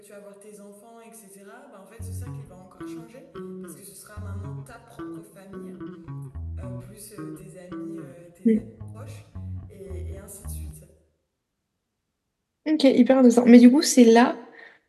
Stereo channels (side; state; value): both; identical; correlation 1.00